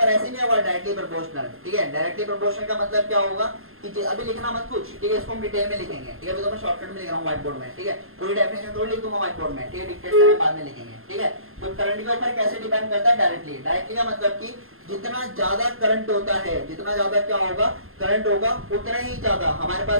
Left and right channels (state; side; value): late; left; 0.61 ms